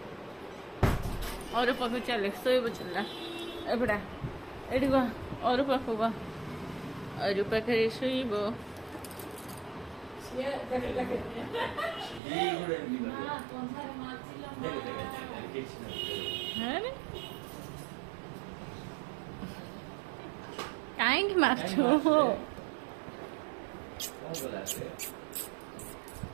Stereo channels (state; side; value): drops out; left; at 12.2 s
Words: और पाखु चले शोब चलला एपड़ा एठी गो और पाखु गो और पाखे शोब कहीं मारछो